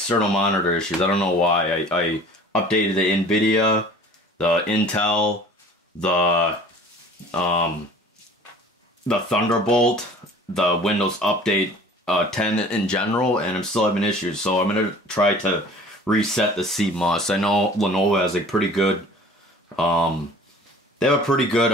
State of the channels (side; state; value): both; normal; correlation 0.46